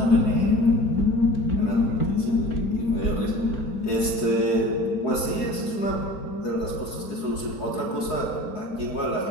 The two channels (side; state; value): right; late; 4.7 ms